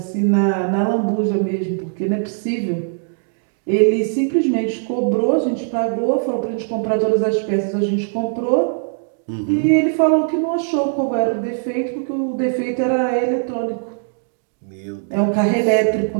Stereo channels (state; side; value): silent; left; digital silence